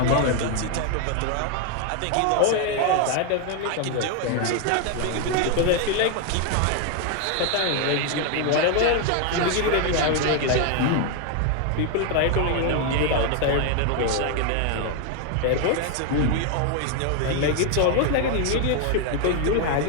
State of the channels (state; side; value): different; both; correlation 0.01